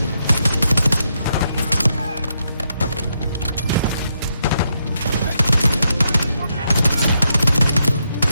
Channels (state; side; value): inverted; both; correlation -0.80